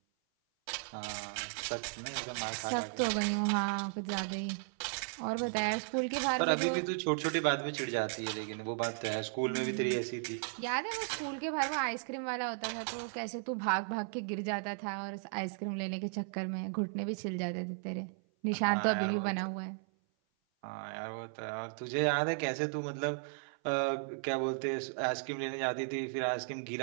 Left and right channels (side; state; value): left; silent; 54 dB below the other